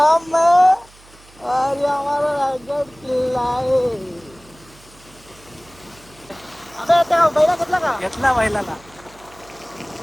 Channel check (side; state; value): right; noise; hum, 26 dB below the sound